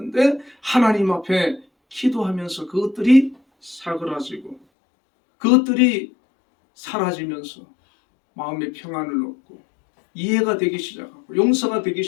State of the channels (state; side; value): drops out; right; at 4.6 s